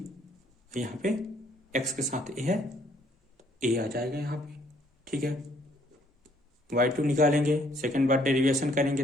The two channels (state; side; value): normal; both; correlation 0.65